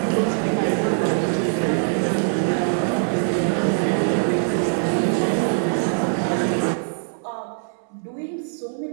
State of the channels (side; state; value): left; silent; 64 dB below the other